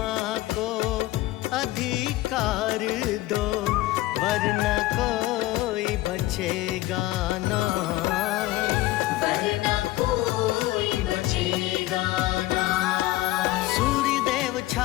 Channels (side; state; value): right; quieter; 17.5 dB